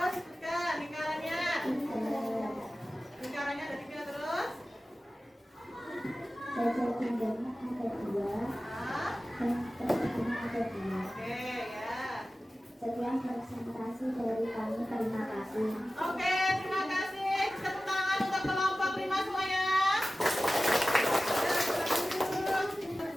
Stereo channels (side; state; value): both; normal; correlation 0.96